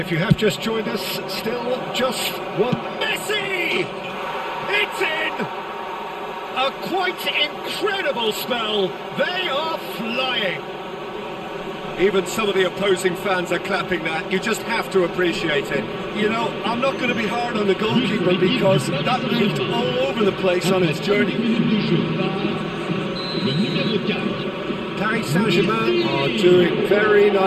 you have just joined us, still just one. Messi! It's in! A quite incredible spell. They are flying. Even some of the opposing fans are clapping that. You just have to appreciate it. You know, I'm not going to be hard on the goalkeeper because that moved all over the place on its journey. Paris Saint-Germain are doing very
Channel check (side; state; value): both; identical; correlation 1.00